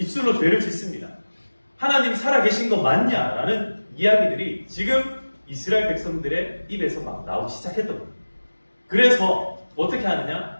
죄를 짓습니다. 하나님 살아계신 거 맞냐라는 이야기들이 지금 이스라엘 백성들의 입에서 막 나오기 시작했던 거예요. 그래서 어떻게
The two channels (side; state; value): both; inverted; correlation -1.00